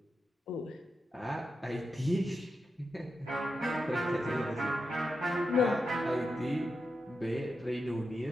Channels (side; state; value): both; normal; correlation 0.88